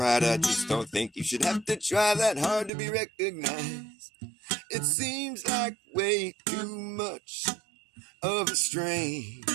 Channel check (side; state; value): left; drops out; at 2.7 s